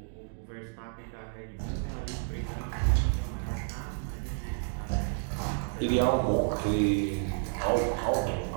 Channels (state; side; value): silent; left; 57 dB below the other